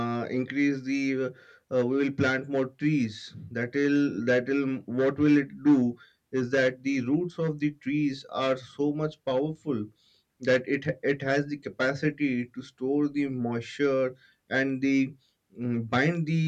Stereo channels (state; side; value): identical; both; correlation 1.00